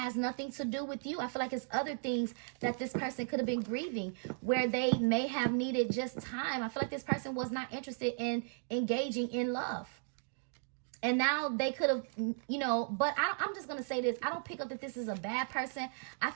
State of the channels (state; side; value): silent; left; 54 dB below the other